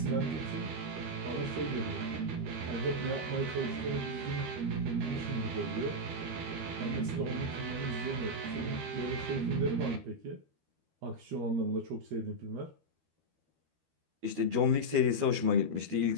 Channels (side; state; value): left; late; 13 ms